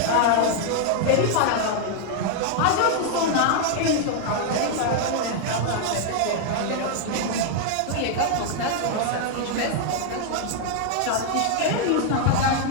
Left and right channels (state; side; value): different; both; correlation 0.00